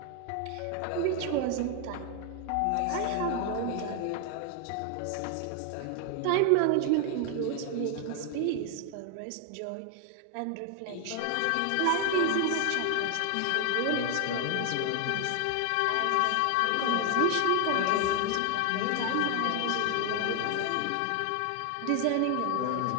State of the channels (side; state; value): both; different; correlation 0.00